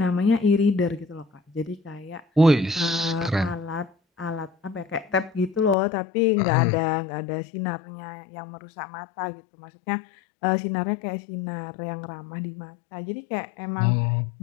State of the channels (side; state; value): right; drops out; at 5.8 s